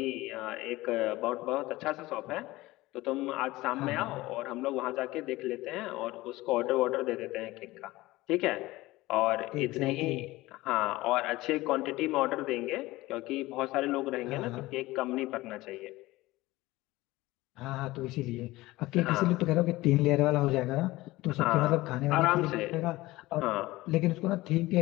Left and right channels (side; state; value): right; quieter; 18.9 dB